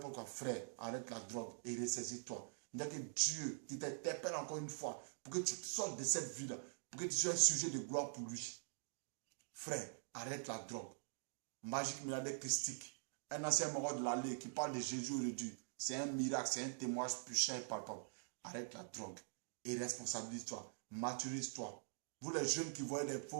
quoi. Frère, arrête la drogue et ressaisis-toi. Il n'y a que Dieu qui t'interpelle encore une fois pour que tu sortes de cette vie-là, pour que tu sois un sujet de gloire pour lui. Frère, arrête la drogue. Magique milliardaire christique. Un ancien mort de l'allée qui parle de Jésus aujourd'hui. C'est un miracle, c'est un témoignage puissant et palpable. Arrête la drogue et responsabilise-toi. Maturise-toi. Vous les jeunes qui voient des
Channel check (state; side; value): silent; left; digital silence